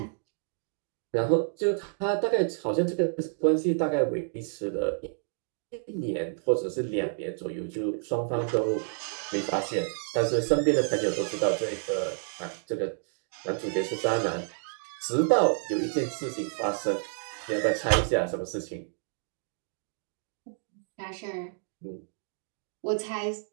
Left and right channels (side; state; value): left; silent; digital silence